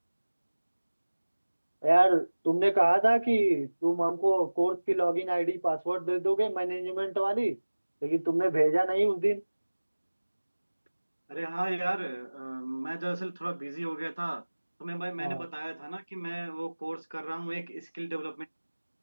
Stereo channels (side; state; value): both; inverted; correlation -1.00